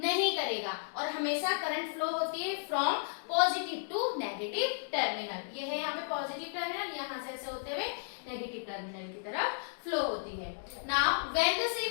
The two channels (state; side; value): silent; right; digital silence